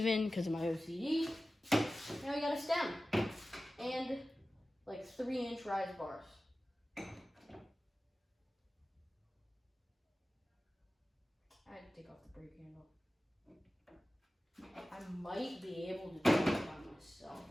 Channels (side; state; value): both; normal; correlation 0.95